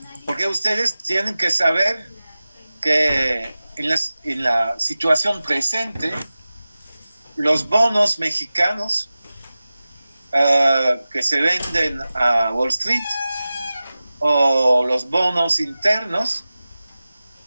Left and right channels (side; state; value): both; inverted; correlation -0.96